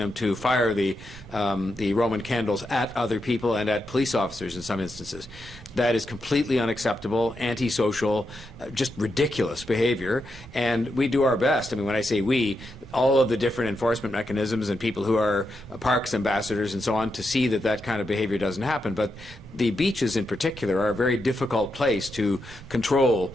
to fire the Roman candles at other people and at police officers in some instances. That is completely unacceptable, antisocial, just ridiculous behavior, and we do our best. I mean, when I say we, all of the different enforcement mechanisms and people who are parks ambassadors and so on, to see that that kind of behavior doesn't happen. But the beaches in particular are a very difficult place to control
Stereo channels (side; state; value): both; normal; correlation 0.85